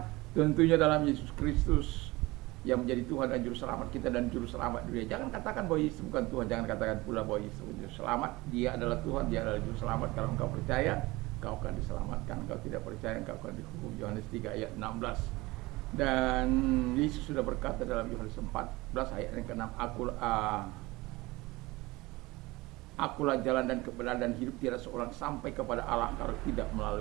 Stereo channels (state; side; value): quieter; left; 21.4 dB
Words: tentunya dalam Yesus Kristus yang menjadi Tuhan dan Juru Selamat kita dan Juru Selamat dunia. Jangan katakan bahwa Yesus bukan Tuhan, jangan katakan pula bahwa Yesus Juru Selamat. Dia adalah Tuhan, dia adalah Juru Selamat. Kalau engkau percaya, engkau akan diselamatkan. Engkau tidak percaya, engkau akan dihukum. Yohanes 3 ayat 16. Dan Yesus sudah berkata dalam Yohanes 14 ayat yang ke-6, Akulah jalan dan kebenaran dan hidup, tidak seorang sampai kepada Allah kalau tidak